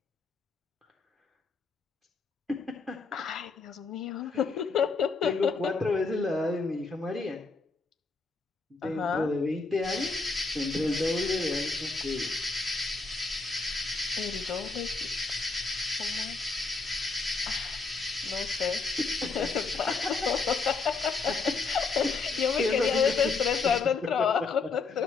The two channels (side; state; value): right; quieter; 4.2 dB